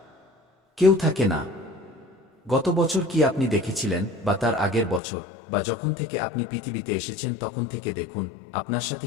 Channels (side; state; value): right; drops out; at 5.0 s